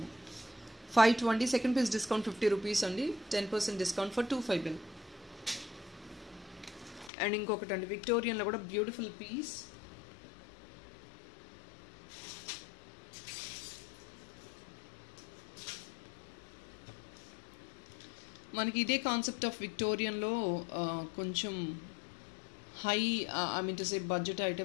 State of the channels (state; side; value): drops out; right; at 7.1 s